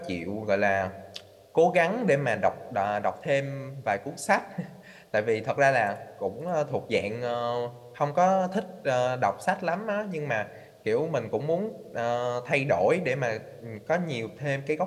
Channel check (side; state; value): both; identical; correlation 1.00